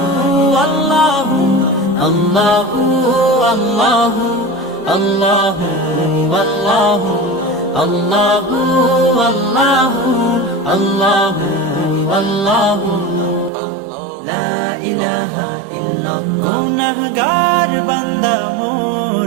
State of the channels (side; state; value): left; drops out; at 13.5 s